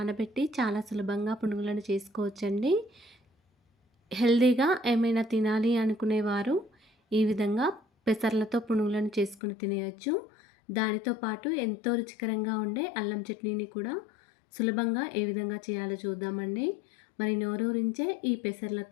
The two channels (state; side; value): drops out; right; at 9.4 s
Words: చాలా సులభంగా పునుగులను చేసుకోవచ్చండి. హెల్తీగా ఏమైనా తినాలి అనుకునేవారు ఈ విధంగా పెసర్లతో పునుగులను చేసుకుని తినేయచ్చు. దానితో పాటు ఎంతో రుచికరంగా ఉండే అల్లం చట్నీని కూడా సులభంగా ఏ విధంగా చేయాలో చూద్దామండి. మరి నోరూరించే ఈ